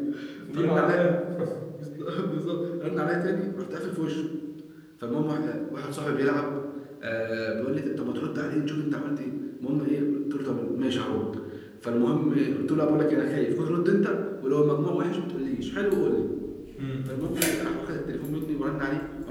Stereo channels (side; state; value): both; identical; correlation 1.00